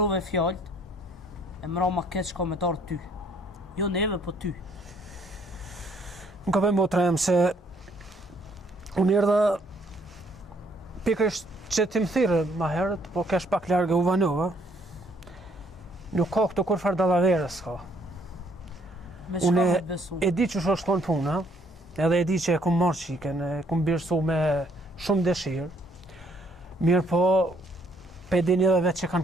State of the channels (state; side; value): normal; both; correlation 0.66